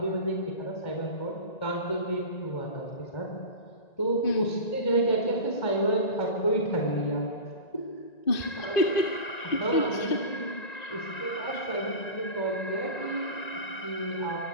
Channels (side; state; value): right; late; 1.9 ms